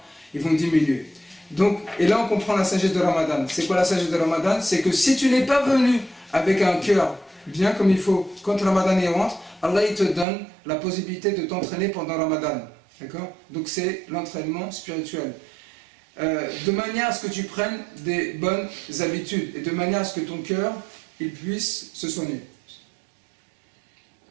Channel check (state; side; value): drops out; left; at 10.2 s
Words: Ils vont diminuer. Donc, et là on comprend la sagesse de Ramadan. C'est quoi la sagesse de Ramadan? C'est que si tu n'es pas venu avec un cœur bien comme il faut, quand Ramadan y rentre, Allah il te donne la possibilité de t'entraîner pendant Ramadan, d'accord? Donc c'est l'entraînement spirituel. De manière à ce que tu prennes des bonnes habitudes et de manière à ce que ton cœur il puisse se soigner.